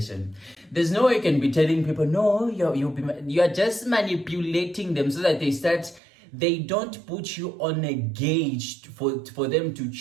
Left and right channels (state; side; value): drops out; left; at 6.0 s